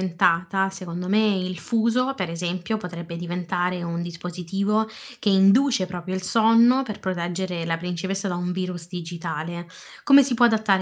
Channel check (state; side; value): identical; both; correlation 1.00